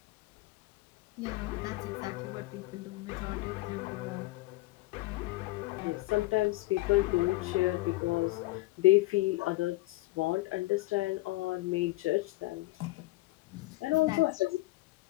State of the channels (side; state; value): right; quieter; 19.6 dB